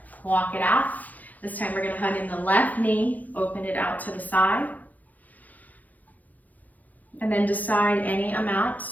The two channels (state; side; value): late; right; 0.080 ms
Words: walk it out. This time we're going to hug in the left knee, open it out to the side. And then decide any amount